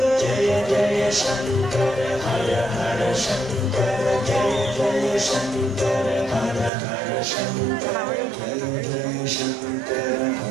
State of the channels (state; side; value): drops out; left; at 6.7 s